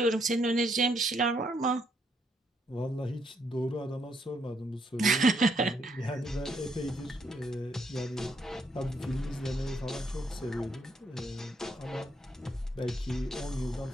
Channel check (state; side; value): normal; both; correlation 0.73